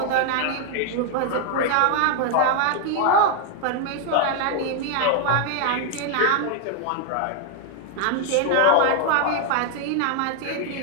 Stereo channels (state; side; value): different; both; correlation 0.00